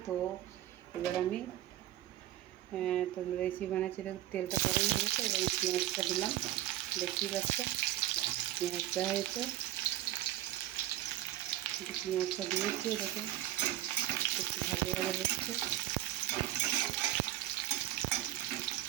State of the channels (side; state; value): left; quieter; 14.1 dB